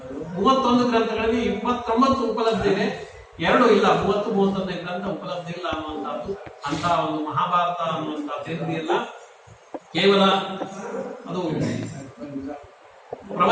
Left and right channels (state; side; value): identical; both; correlation 1.00